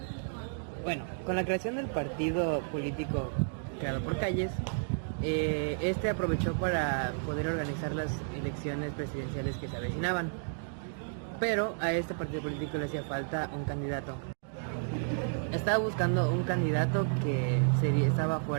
Bueno, con la creación del partido político creado por Calles, aprovechó para poder organizar las elecciones presidenciales que se avecinaban. Pero a este partido político le hacía falta un candidato. Estaba buscando un candidato que estaba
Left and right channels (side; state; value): left; silent; digital silence